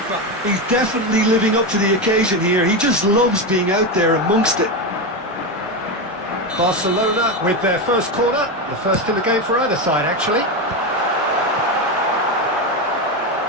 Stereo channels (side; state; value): both; normal; correlation 0.14